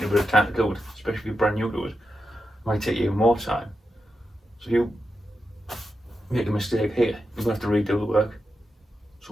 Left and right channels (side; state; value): both; normal; correlation 0.88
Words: a bit of time to do it, especially if you're brand new to it. It might take you even more time. So if you make a mistake here, you're going to have to redo the work.